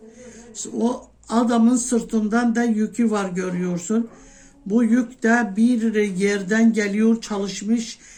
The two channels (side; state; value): both; identical; correlation 1.00